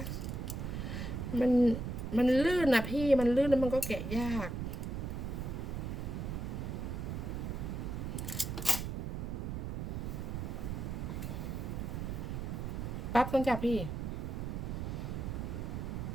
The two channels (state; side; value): noise; right; rumble, 3 dB below the sound